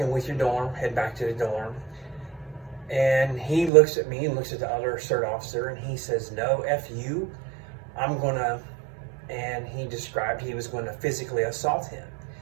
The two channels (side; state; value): left; drops out; at 3.7 s